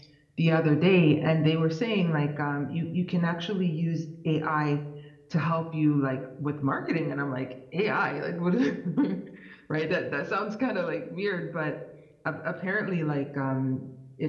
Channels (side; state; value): both; identical; correlation 1.00